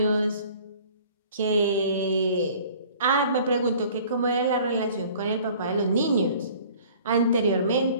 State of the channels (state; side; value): inverted; both; correlation -0.50